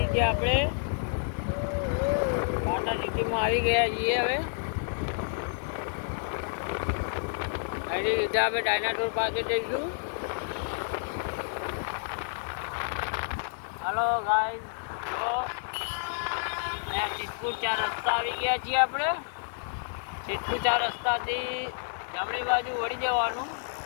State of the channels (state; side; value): silent; right; 58 dB below the other